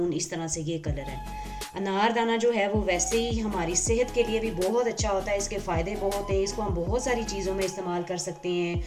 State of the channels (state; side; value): identical; both; correlation 1.00